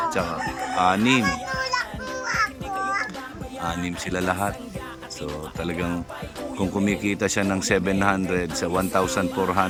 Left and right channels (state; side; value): identical; both; correlation 1.00